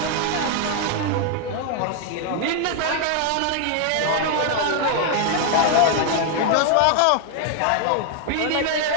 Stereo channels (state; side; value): different; both; correlation 0.00